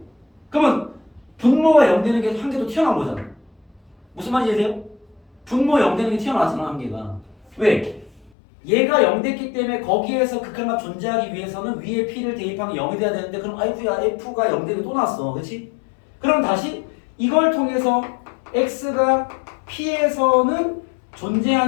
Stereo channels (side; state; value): right; drops out; at 8.3 s